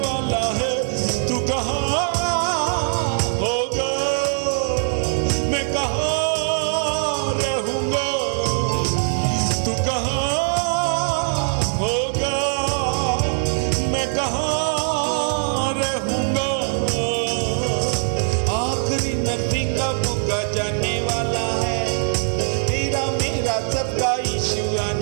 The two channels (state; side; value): silent; left; 64 dB below the other